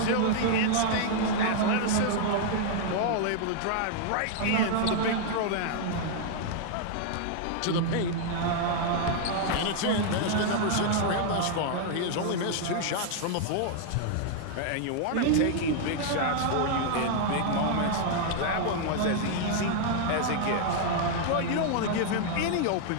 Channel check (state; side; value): different; both; correlation 0.00